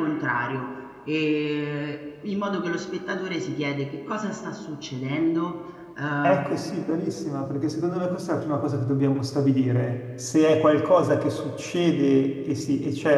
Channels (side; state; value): both; identical; correlation 1.00